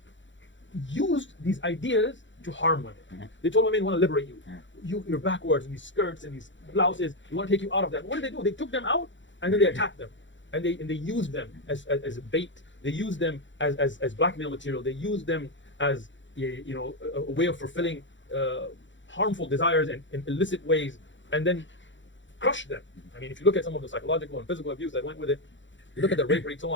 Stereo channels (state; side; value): late; right; 0.54 ms